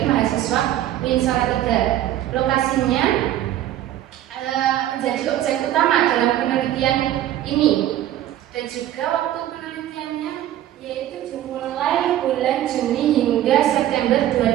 mahasiswa UIN Salatiga. Lokasinya menjadi objek utama dalam penelitian ini, dan juga waktu penelitiannya yaitu dimulai bulan Juni hingga September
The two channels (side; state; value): left; quieter; 12.7 dB